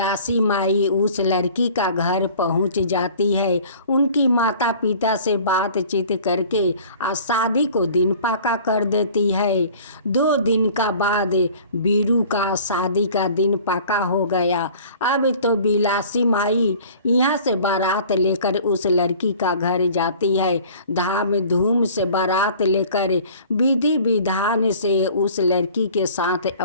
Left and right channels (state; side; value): inverted; both; correlation -0.47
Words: माई उस लड़की का घर पहुंच जाती है। उनकी माता पिता से बातचीत करके शादी को दिन पक्का कर देती है। 2 दिन का बाद बीरू का शादी का दिन पक्का हो गया। अब तो बिलासी माई यहाँ से बारात लेकर उस लड़की का घर जाती है। धाम धूम से बारात लेकर विधि विधान से उस लड़की के साथ